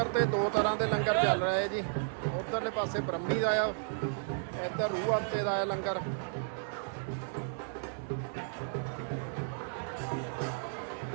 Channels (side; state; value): left; silent; digital silence